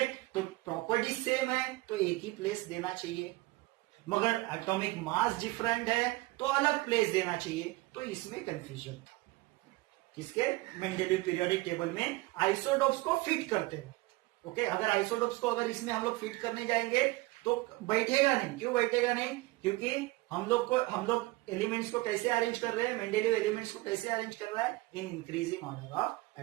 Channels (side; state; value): left; quieter; 21.1 dB